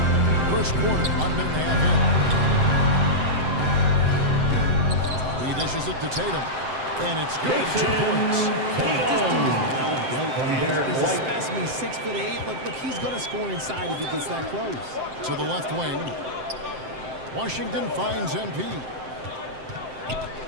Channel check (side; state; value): left; late; 7.7 ms